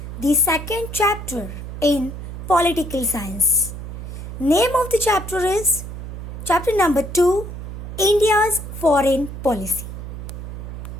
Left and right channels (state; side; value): noise; right; hum, 9 dB below the sound